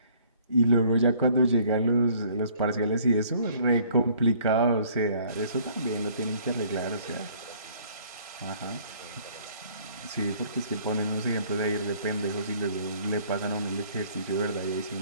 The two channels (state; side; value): inverted; both; correlation -0.59